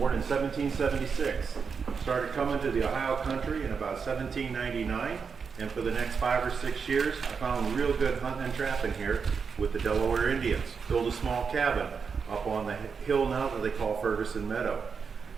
in 1776. Started coming to the Ohio country in about 1799. And for the next 5 or 6 years, I found real good hunting and trapping here with the Delaware Indians. Built a small cabin up on the hill now that they call Ferguson Meadow.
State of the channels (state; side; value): quieter; left; 5.8 dB